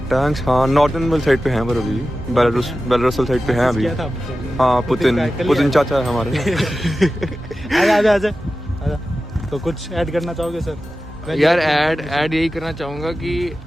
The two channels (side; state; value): both; normal; correlation 0.94